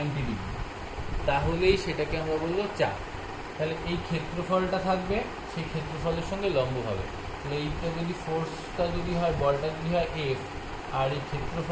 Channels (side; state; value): both; identical; correlation 1.00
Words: ডিগ্রি, তাহলেই সেটাকে আমরা বলবো চাপ। তাহলে এই ক্ষেত্রফলটা থাকবে, সেই ক্ষেত্রফলের সঙ্গে লম্ব হবে। তাহলে এইটা যদি ফোর্সটা যদি হয়, বলটা যদি হয় এফ, আর এই